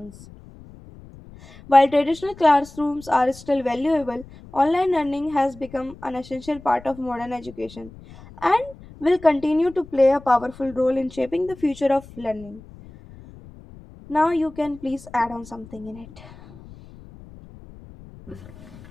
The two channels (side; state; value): left; noise; rumble, 20 dB below the sound